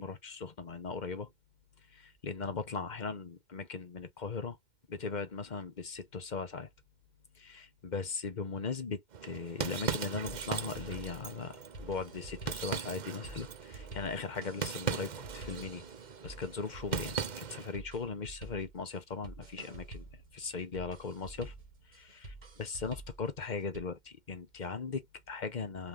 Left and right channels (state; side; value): late; right; 2.1 ms